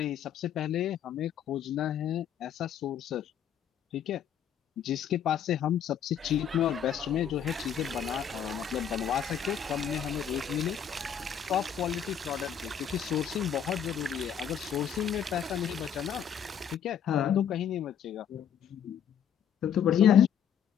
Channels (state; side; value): quieter; right; 8.5 dB